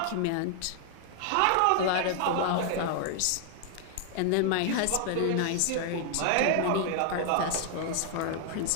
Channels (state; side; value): different; both; correlation 0.00